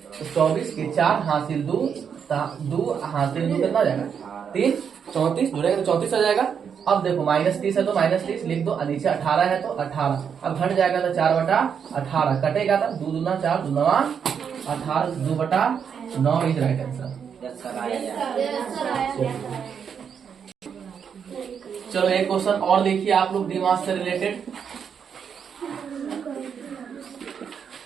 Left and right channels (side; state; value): left; quieter; 7.2 dB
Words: तो 24 के 4 हासिल 2 हासिल 2 कितना जाएगा? 3 34 जुड़ेगा तो 34 आ जाएगा। अब देखो -30 है तो -30 लिख दो, नीचे 18 है तो 18। अब घट जाएगा तो 4/18 कटेगा तो 2 दूना 4 2 9 18 2/9 इज राइट आंसर। चलो एक क्वेश्चन और देखिए आप लोग दिमाग से रिलेटेड।